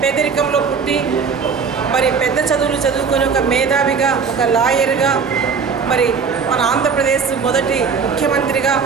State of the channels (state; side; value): quieter; left; 5.7 dB